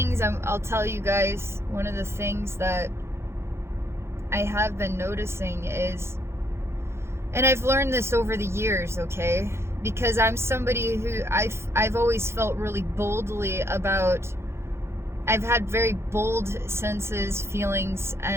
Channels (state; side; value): late; left; 0.13 ms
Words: I'll tell you guys, one of the things that I have been noticing is, and I've learned this over the years, okay? Because I'm somebody who I've always felt really boldly about, I've had very bold senses, feelings,